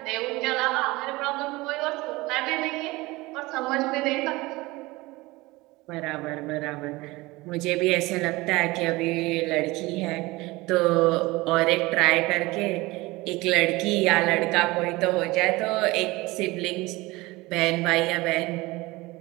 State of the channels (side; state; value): left; quieter; 21.3 dB